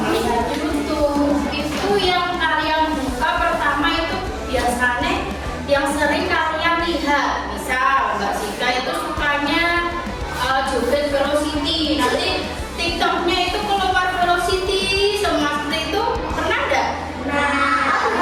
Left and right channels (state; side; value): identical; both; correlation 1.00